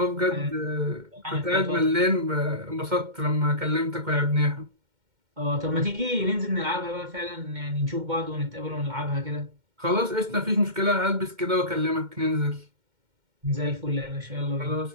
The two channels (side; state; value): left; late; 2.1 ms